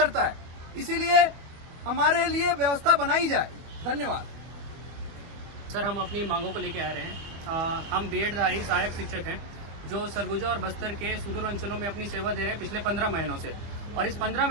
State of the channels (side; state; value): left; late; 25 ms